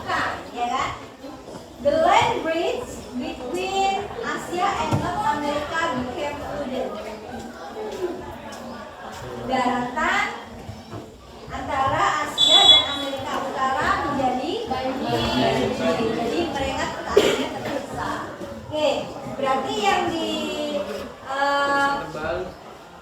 ya kan? The land bridge between Asia and North America became flooded. Daratan antara Asia dan Amerika Utara menjadi banjir. Jadi mereka akhirnya terdesak. Oke, berarti yang di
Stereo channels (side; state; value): both; identical; correlation 1.00